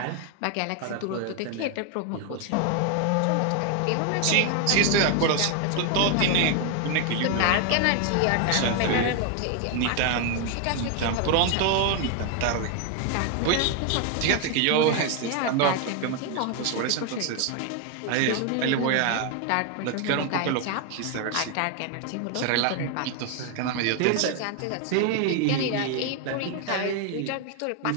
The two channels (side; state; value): both; different; correlation 0.01